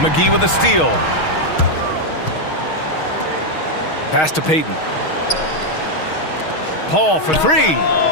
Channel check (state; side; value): late; right; 6.4 ms